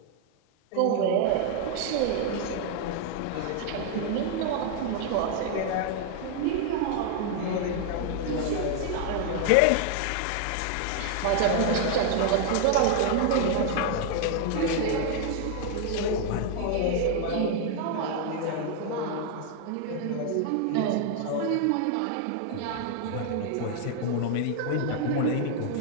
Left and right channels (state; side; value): different; both; correlation 0.00